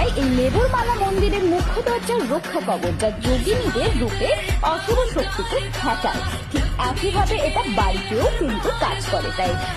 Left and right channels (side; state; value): both; identical; correlation 1.00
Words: এই লেবুর মালা মন্দিরের মুখ্য দরজার রক্ষা কবচ, যা যোগিনীদের রূপে অশুভ শক্তিকে ঠেকায়। ঠিক একইভাবে এটা বাড়িতেও কিন্তু কাজ করে। তাই